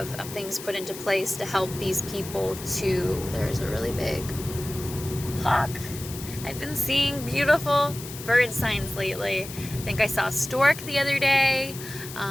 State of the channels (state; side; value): noise; left; hiss, 12 dB below the sound